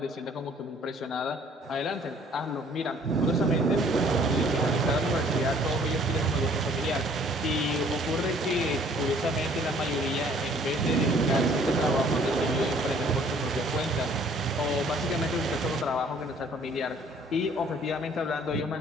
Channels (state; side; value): normal; both; correlation 0.57